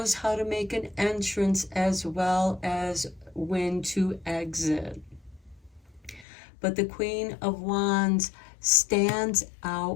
how to make an entrance as well as when to exit. but the Queen of Wands stands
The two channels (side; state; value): right; drops out; at 6.2 s